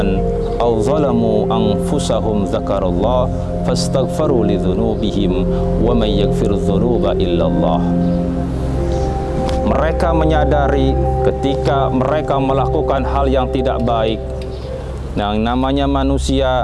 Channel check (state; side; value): identical; both; correlation 1.00